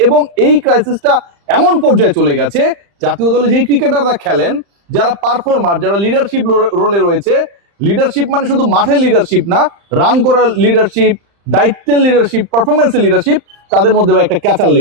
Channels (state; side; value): late; left; 35 ms